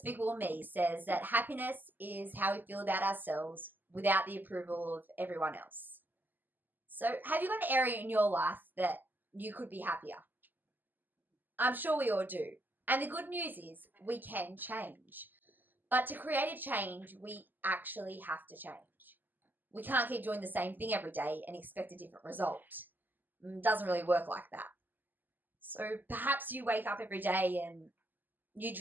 Me says that happiness is how we feel about ourselves without the approval of everyone else. So, have you got an area in your life that you could be happier? I'm sure we all do. And the good news is we can change. But to create a change, we actually have to change. We can't keep doing the same thing every day and expect a different result. It doesn't really work like that. So perhaps you wake up every day and you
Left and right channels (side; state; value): left; late; 0.088 ms